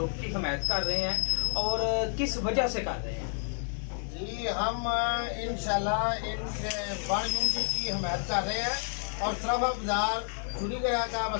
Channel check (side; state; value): right; silent; 58 dB below the other